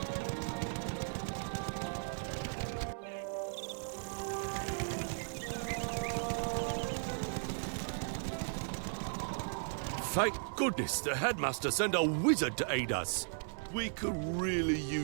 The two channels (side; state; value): left; silent; digital silence